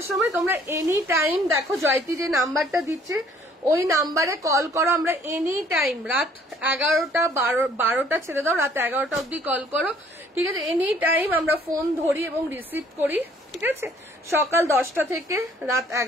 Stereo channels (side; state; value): both; normal; correlation 0.59